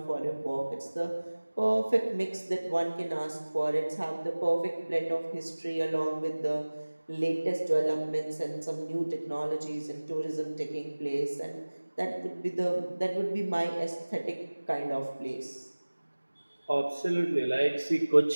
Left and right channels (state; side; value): inverted; both; correlation -1.00